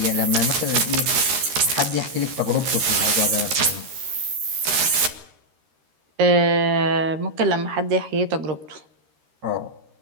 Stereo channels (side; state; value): left; late; 13 ms